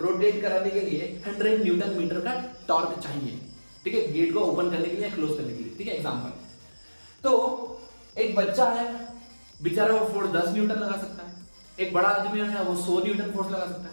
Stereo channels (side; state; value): both; inverted; correlation -1.00